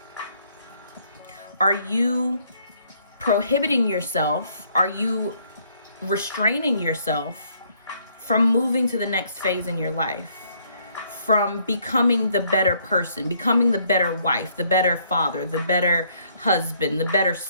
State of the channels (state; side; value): inverted; both; correlation -0.67